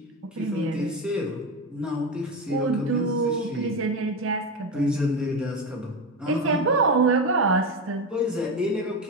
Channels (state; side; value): normal; both; correlation 0.18